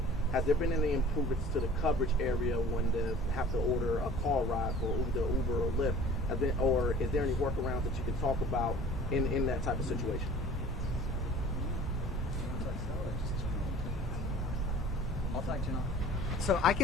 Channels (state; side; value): normal; both; correlation 0.46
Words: has there been any improvements to the coverage area when they have to order a car ride for either Uber or Lyft? Or is there any workarounds that you can talk about in that type of situation? So I